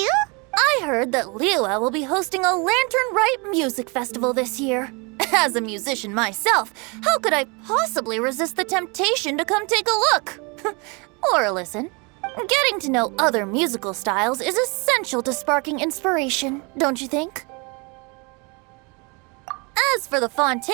I heard that Liua will be hosting a Lantern Rite music festival this year. As a musician myself, how could I possibly resist the temptation to come take a look? Or listen. Getting to know other musical styles is essential to sparking inspiration, don't you think? As for the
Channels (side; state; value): left; quieter; 30.2 dB